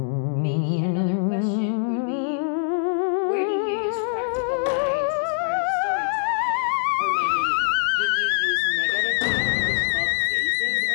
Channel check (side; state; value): right; silent; digital silence